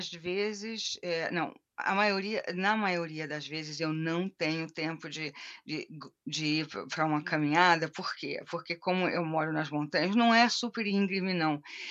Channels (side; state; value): both; identical; correlation 1.00